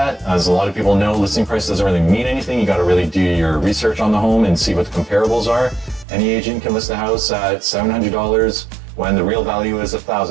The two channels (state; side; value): drops out; left; at 6.1 s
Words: As a lot of people know, listing price doesn't really mean anything. You got to really do your research on the home and see what the comparables are. Any agent can list a house at $700 when the real value is